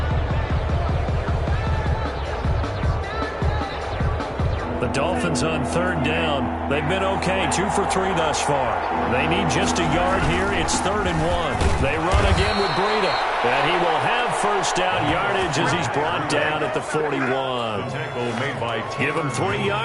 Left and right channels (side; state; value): both; identical; correlation 1.00